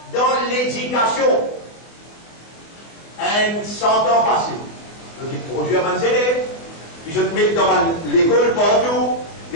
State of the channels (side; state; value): right; late; 24 ms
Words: dans l'éducation. 100 ans passés. Donc il produit à mes élèves, puis je te mets dans l'école partout,